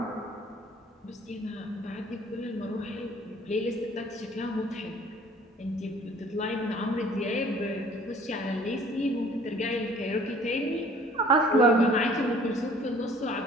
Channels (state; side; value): normal; both; correlation 0.53